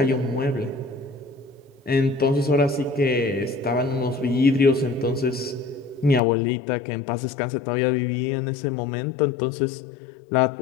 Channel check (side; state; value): right; drops out; at 6.2 s